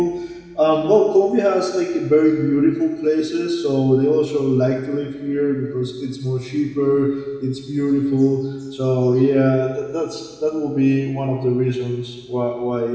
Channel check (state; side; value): identical; both; correlation 1.00